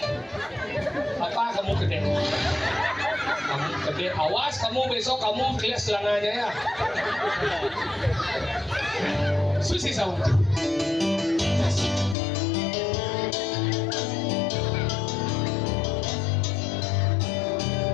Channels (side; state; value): right; drops out; at 12.2 s